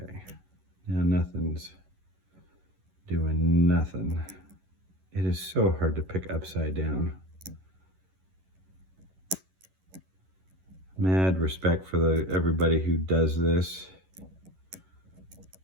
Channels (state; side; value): late; left; 11 ms